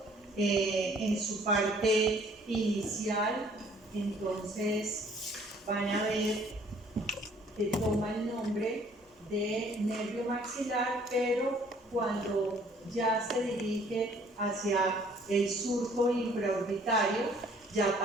En su parte inicial, entonces van a ver que toma el nombre de nervio maxilar, pero cuando ya se dirige hacia el surco infraorbitario, ya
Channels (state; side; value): normal; both; correlation 0.58